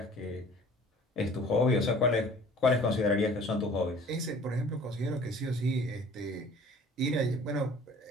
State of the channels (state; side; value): normal; both; correlation 0.49